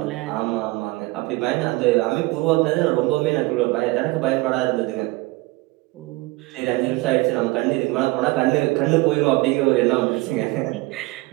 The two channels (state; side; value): quieter; left; 22.0 dB